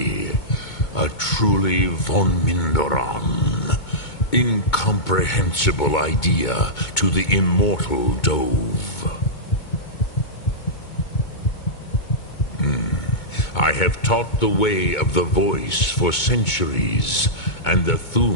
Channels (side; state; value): right; late; 2.2 ms